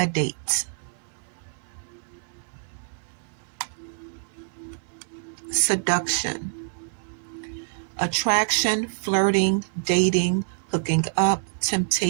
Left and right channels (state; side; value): silent; left; 61 dB below the other